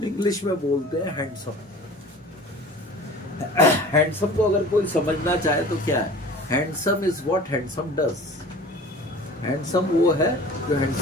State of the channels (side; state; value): both; normal; correlation 0.42